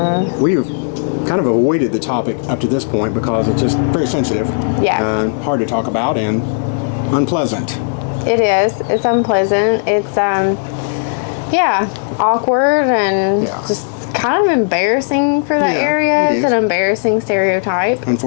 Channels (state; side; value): silent; right; 70 dB below the other